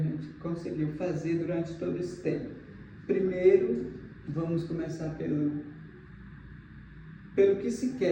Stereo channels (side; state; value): both; identical; correlation 1.00